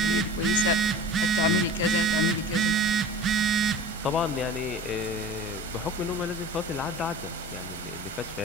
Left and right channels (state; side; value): normal; both; correlation 0.38